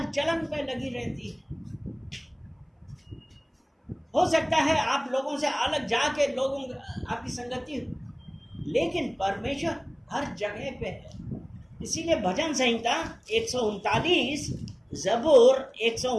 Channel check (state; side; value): identical; both; correlation 1.00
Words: चलन पे लगी रहती है। हो सकता है आप लोगों से अलग जाके लोगों आपकी संगति हो, लेकिन परमेश्वर हर जगह पे है। इसीलिए भजन संहिता 139, ज़बूर